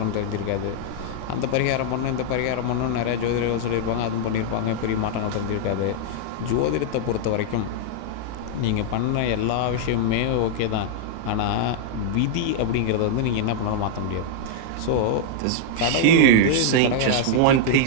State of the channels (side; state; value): both; different; correlation -0.01